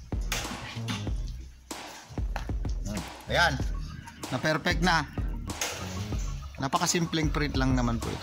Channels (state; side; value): identical; both; correlation 1.00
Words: Ayan. Na perfect na. Napakasimpleng print lang naman po